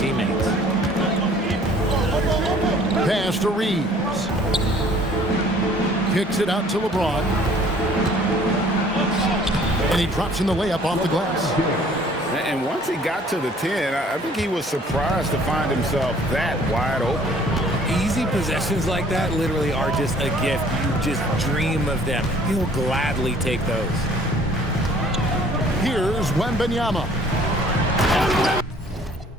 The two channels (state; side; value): normal; both; correlation 0.55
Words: Pass to Reeves. Kicks it out to LeBron. And he drops in the layup off the glass. And once he got to the 10, I think he was surprised to find himself that wide open. Easy possessions like that literally are just a gift. You just dream of them. He'll gladly take those. Here's Wembanyama.